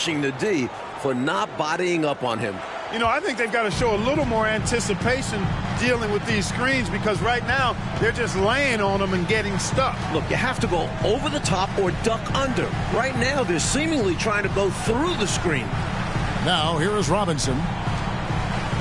the D for not bodying up on him. You know, I think they've got to show a little more anticipation dealing with these screens because right now they're just laying on them and getting stuck. Look, you have to go over the top or duck under. Right now they're seemingly trying to go through the screen. Now, here is Robinson.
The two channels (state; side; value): identical; both; correlation 1.00